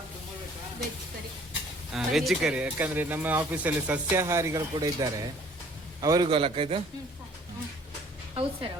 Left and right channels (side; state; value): both; normal; correlation 0.55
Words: ವೆಜ್ ಕರಿ. ಯಾಕಂದ್ರೆ ನಮ್ಮ ಆಫೀಸಲ್ಲಿ ಸಸ್ಯಾಹಾರಿಗಳು ಕೂಡ ಇದ್ದಾರೆ, ಅವರಿಗೂ ಅಲ್ಲಕ್ಕ ಇದು. ಹೌದು ಸರ್,